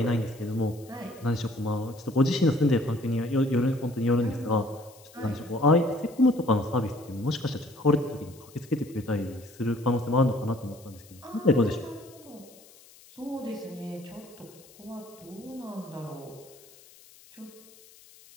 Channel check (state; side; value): noise; left; hiss, 24 dB below the sound